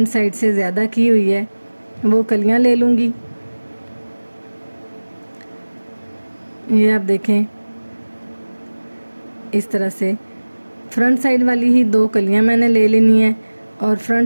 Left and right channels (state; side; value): inverted; both; correlation -1.00